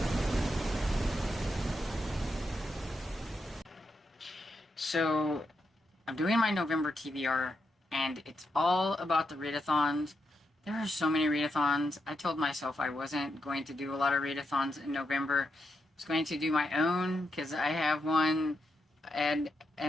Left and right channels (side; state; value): both; normal; correlation 0.84